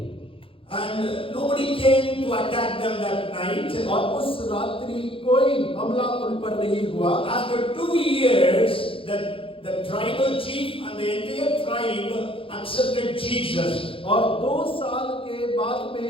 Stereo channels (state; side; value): late; right; 0.26 ms